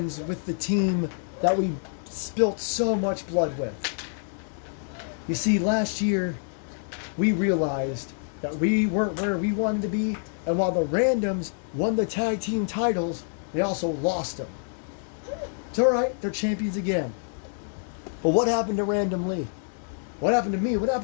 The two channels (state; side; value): silent; right; digital silence